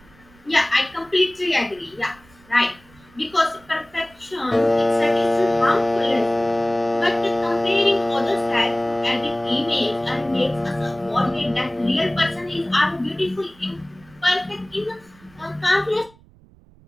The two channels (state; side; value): noise; right; rumble, 27 dB below the sound